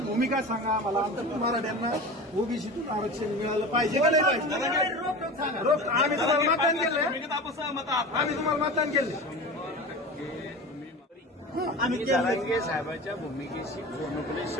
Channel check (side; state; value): both; normal; correlation 0.31